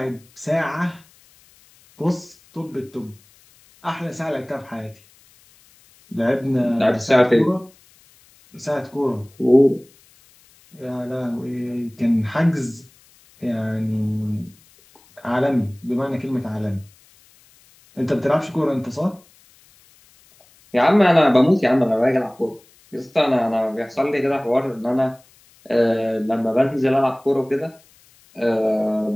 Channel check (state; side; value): noise; left; hiss, 29 dB below the sound